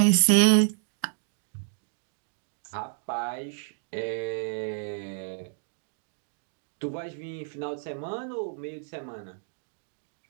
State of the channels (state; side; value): silent; left; digital silence